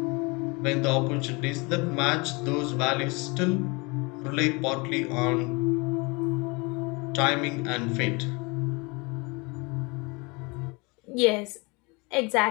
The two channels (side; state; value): right; quieter; 28.0 dB